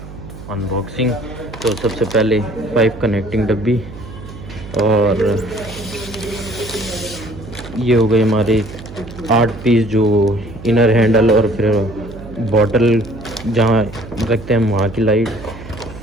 अनबॉक्सिंग। तो सबसे पहले पाइप कनेक्टिंग डब्बी, और ये हो गई हमारी 8 पीस जो इनर हैंडल, और फिर बॉटल जहाँ रखते हैं वहाँ की लाइट।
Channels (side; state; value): right; noise; hum, 14 dB below the sound